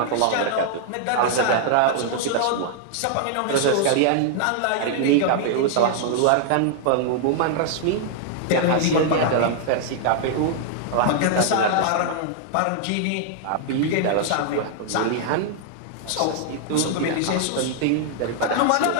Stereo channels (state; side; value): different; both; correlation 0.00